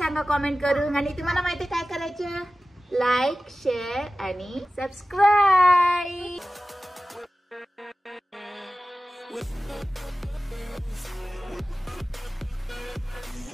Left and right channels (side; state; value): both; normal; correlation 0.96